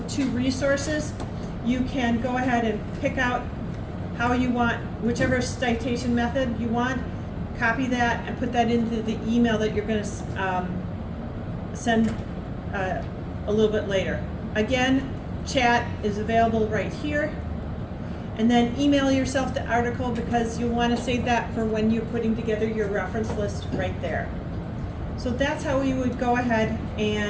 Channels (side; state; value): both; identical; correlation 1.00